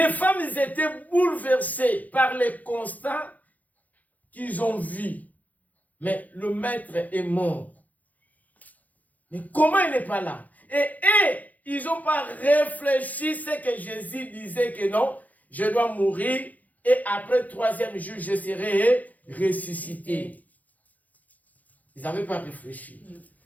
femmes étaient bouleversées par les constats qu'ils ont vus. Mais le maître est mort. Mais comment il n'est pas là? Et ils n'ont pas réfléchi ce que Jésus disait que non, je dois mourir et après 3e jour, je serai ressuscité. Ils n'avaient pas réfléchi.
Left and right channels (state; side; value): late; right; 0.079 ms